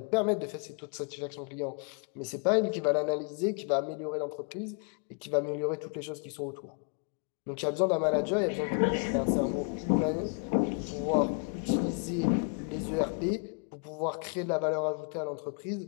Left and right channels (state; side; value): quieter; right; 40.0 dB